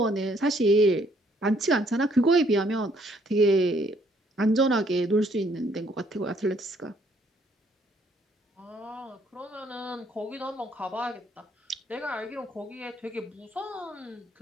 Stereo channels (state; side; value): normal; both; correlation 0.66